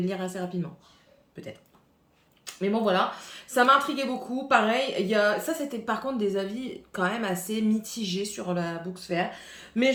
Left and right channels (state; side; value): identical; both; correlation 1.00